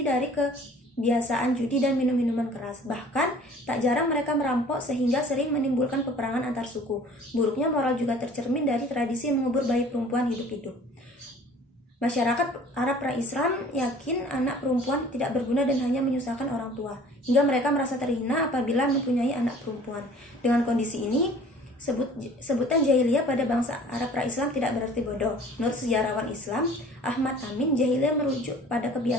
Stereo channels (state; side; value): normal; both; correlation 0.49